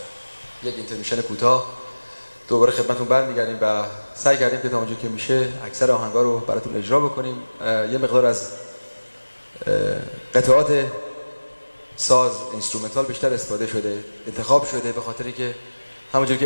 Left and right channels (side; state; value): both; inverted; correlation -1.00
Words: یک اینترمیشن کوتاه دوباره خدمتتون برمیگردیم و سعی کردیم که تا اونجا که میشه اکثر آهنگا رو براتون اجرا بکنیم. یه مقدار از قطعات ساز اینسترومنتال بیشتر استفاده شده، انتخاب شده، به خاطری که همونجور